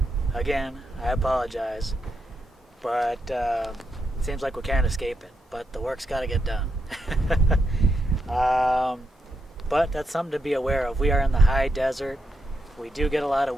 Again, I apologize. But it seems like we can't escape it. But the work's got to get done. But that's something to be aware of. We are in the high desert. We do get a lot of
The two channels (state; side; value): normal; both; correlation 0.83